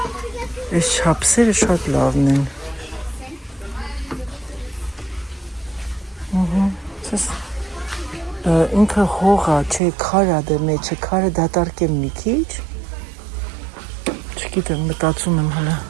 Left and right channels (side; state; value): left; drops out; at 9.8 s